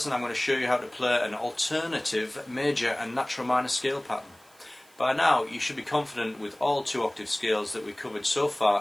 I'm going to show you how to play an alternative major and natural minor scale pattern. By now you should be confident with all 2-octave scales that we covered so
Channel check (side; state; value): right; noise; hiss, 28 dB below the sound